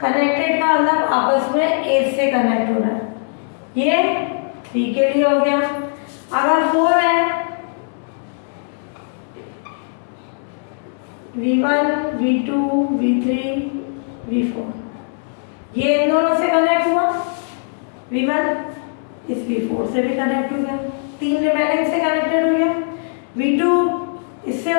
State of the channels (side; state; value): right; silent; digital silence